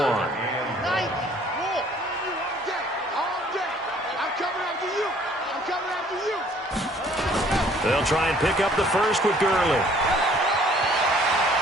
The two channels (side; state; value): both; normal; correlation 0.58